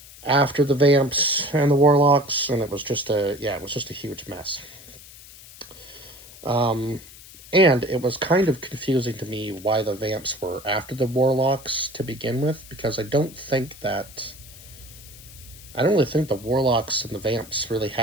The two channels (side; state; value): left; noise; hiss, 19 dB below the sound